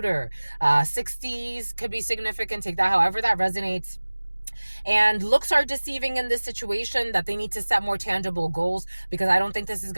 60s could be significant. Take that however that resonates. And looks are deceiving in this situation, that they need to set more tangible goals, because I don't think this is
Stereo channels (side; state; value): both; inverted; correlation -1.00